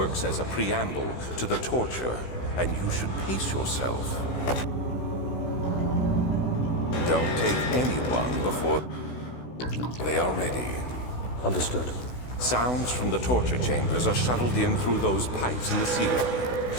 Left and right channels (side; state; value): right; late; 16 ms